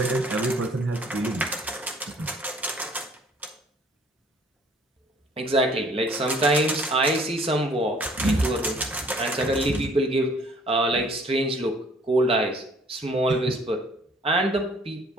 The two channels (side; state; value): both; normal; correlation 0.57